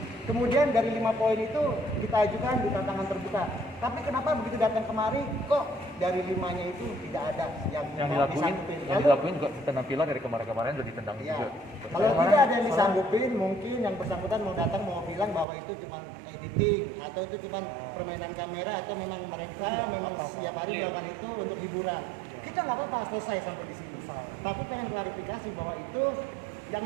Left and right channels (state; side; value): drops out; left; at 15.5 s